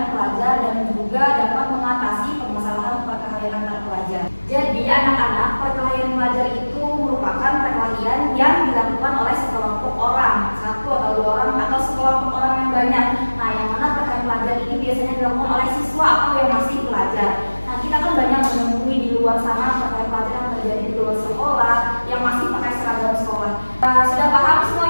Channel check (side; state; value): both; inverted; correlation -1.00